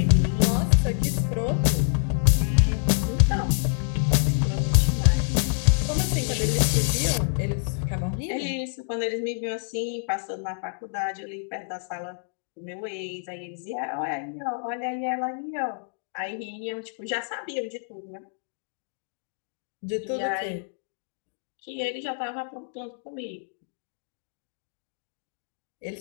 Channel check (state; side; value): silent; right; digital silence